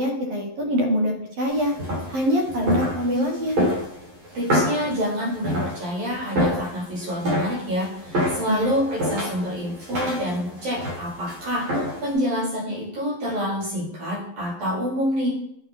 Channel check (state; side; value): late; left; 11 ms